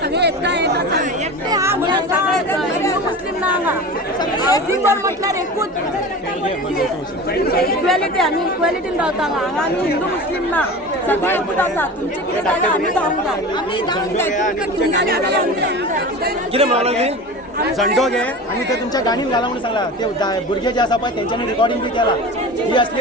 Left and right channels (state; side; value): normal; both; correlation 0.32